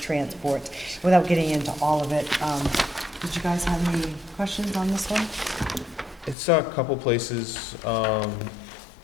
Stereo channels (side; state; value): right; drops out; at 6.4 s